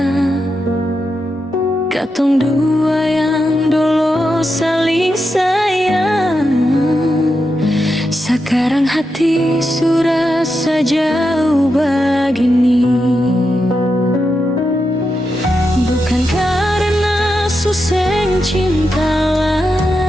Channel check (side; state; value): both; normal; correlation 0.87